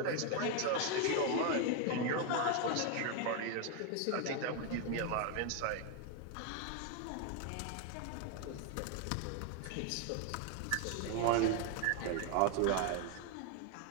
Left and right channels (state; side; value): different; both; correlation 0.01